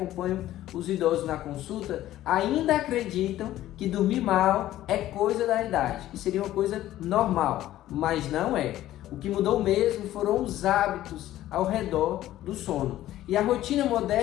os idosos na consulta, ainda acreditam que dormir mal é coisa da idade, que seria uma coisa normal, mas não é. O que mudou mesmo foram os hábitos ao redor do sono. E a rotina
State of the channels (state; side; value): quieter; right; 14.0 dB